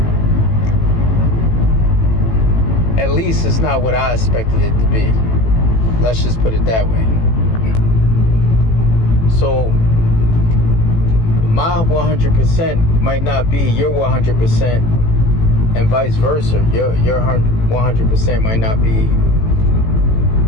at least it's not what I expected it to be. Let's just put it that way. So my 100% might not be your 100%, and vice versa. Your 100% might not be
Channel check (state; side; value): late; right; 18 ms